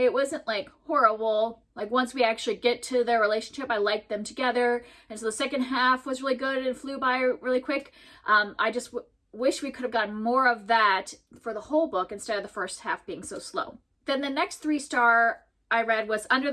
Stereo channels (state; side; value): identical; both; correlation 1.00